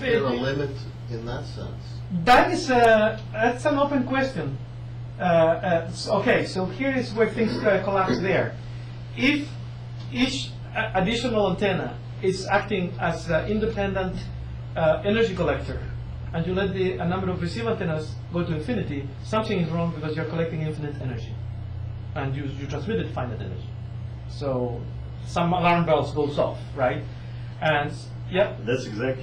be. there a limit in that sense? That is that's an open question. Okay, so here is where things collapse there. If each additional antenna is acting as an independent energy collector, and you let a number of receiver antennas go to infinity, something is wrong because you're collecting infinite energy, and you transmitted finite energy. So some alarm bells goes off, right? And yeah. That's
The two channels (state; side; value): identical; both; correlation 1.00